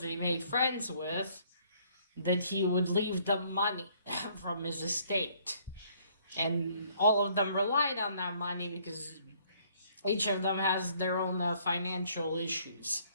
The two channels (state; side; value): inverted; both; correlation -0.63